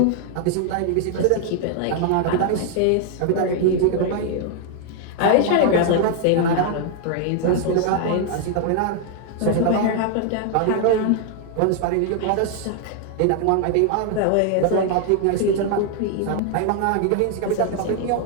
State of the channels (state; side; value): different; both; correlation 0.00